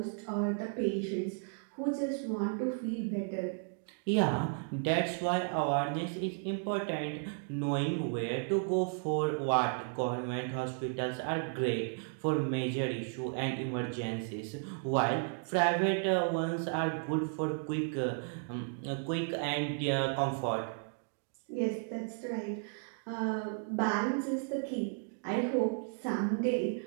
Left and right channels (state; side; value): silent; left; 55 dB below the other